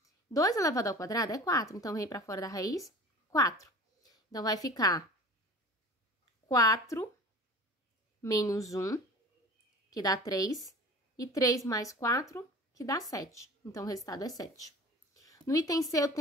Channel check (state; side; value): normal; both; correlation 0.40